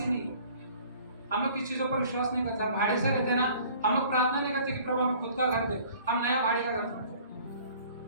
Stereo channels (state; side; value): inverted; both; correlation -0.51